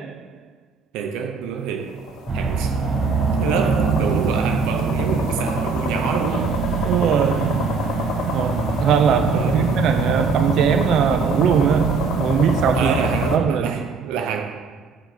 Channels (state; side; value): quieter; left; 4.8 dB